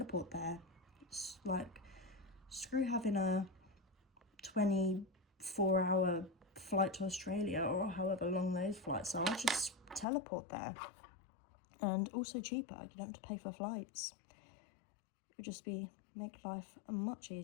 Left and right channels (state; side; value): drops out; right; at 10.1 s